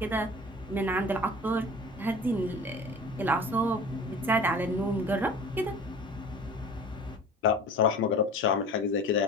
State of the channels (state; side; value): normal; both; correlation 0.40